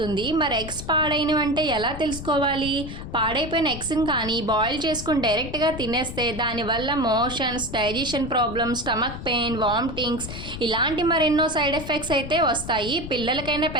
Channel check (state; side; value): noise; left; rumble, 10 dB below the sound